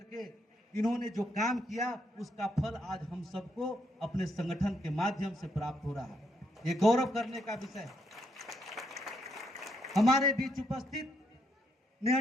इन्होंने जो काम किया उसका फल आज हम सबको अपने संगठन के माध्यम से प्राप्त हो रहा है। ये गौरव करने का विषय है। हमारे बीच उपस्थित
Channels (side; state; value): both; normal; correlation 0.76